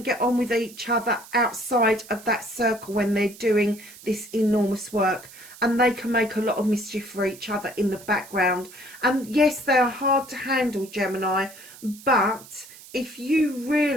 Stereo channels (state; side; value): noise; right; hiss, 19 dB below the sound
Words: get on with each other outside of that circle when they're doing this enormous work. And they can make a lot of mischief for each other in the background. And yes, they are hard to handle, Gemini, but if you